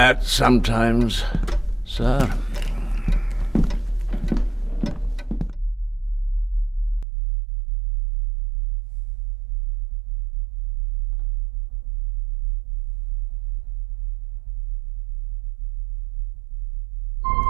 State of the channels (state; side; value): drops out; left; at 7.1 s